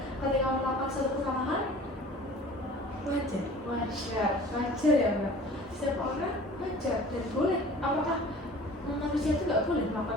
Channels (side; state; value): both; normal; correlation 0.45